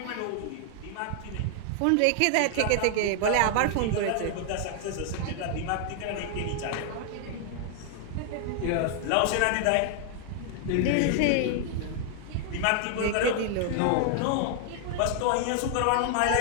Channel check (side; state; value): both; different; correlation 0.00